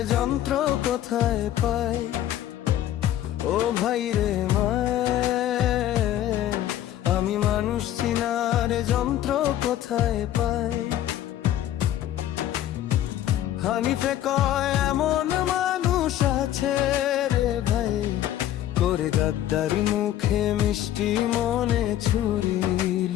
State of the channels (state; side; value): quieter; right; 12.4 dB